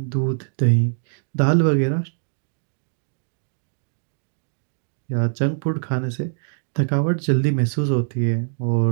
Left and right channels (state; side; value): silent; left; digital silence